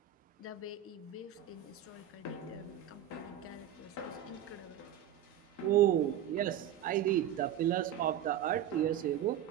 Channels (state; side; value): quieter; left; 10.6 dB